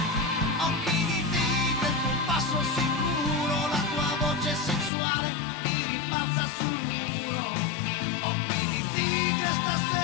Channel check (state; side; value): drops out; right; at 4.9 s